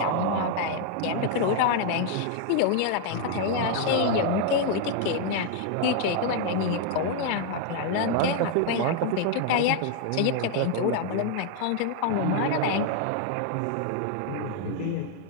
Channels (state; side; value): different; both; correlation 0.00